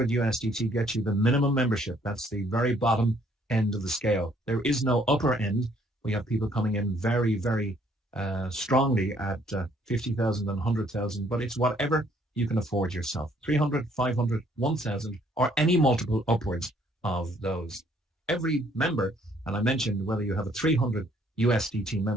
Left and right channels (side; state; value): both; normal; correlation 0.64